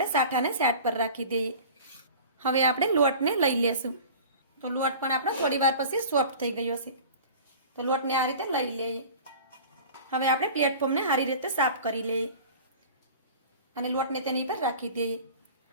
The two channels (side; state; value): both; inverted; correlation -0.40